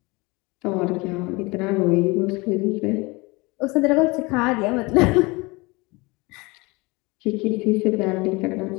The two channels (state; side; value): quieter; right; 24.9 dB